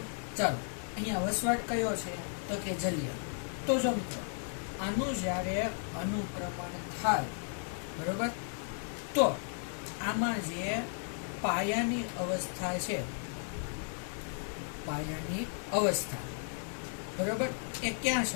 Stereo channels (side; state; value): right; silent; 55 dB below the other